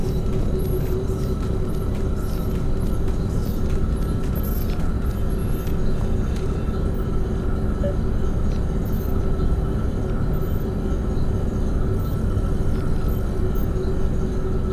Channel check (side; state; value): both; identical; correlation 1.00